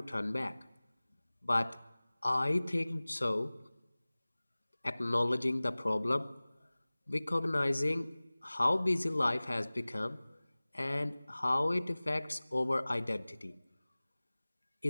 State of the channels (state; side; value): inverted; both; correlation -1.00